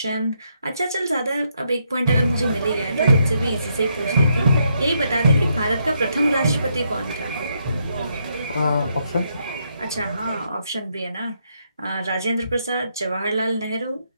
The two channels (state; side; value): inverted; both; correlation -0.77